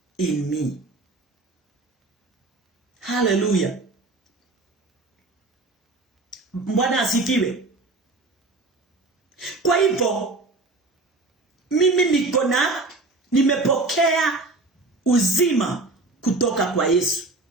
in me. Hallelujah. Bwana asifiwe. Kwa hivyo mimi nimepokea uzima kutoka kwa Yesu.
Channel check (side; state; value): left; quieter; 3.2 dB